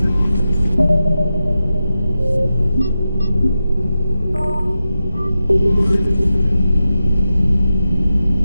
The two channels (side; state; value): both; inverted; correlation -0.91